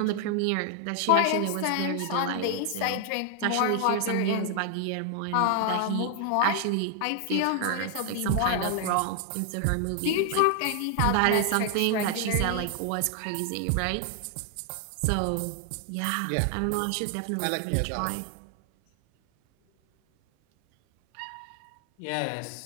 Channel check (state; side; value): different; both; correlation 0.00